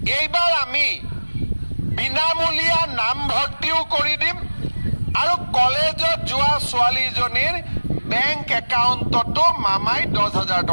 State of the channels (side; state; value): both; inverted; correlation -1.00